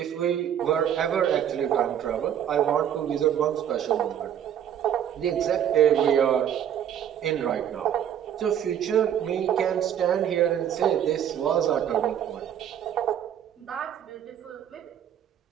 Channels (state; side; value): quieter; left; 9.7 dB